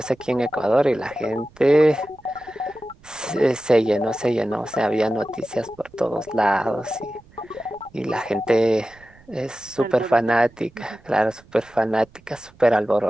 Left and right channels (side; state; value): right; noise; rumble, 27 dB below the sound